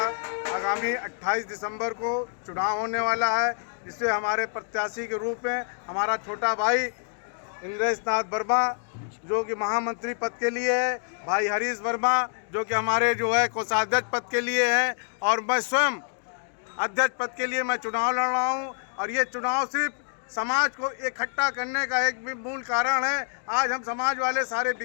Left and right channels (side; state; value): right; silent; 60 dB below the other